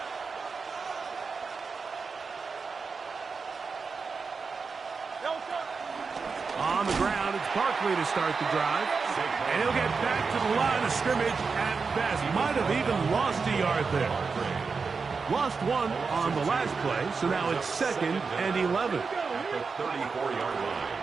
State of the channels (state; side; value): quieter; left; 4.9 dB